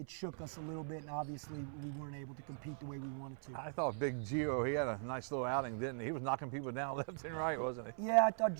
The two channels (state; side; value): silent; left; 51 dB below the other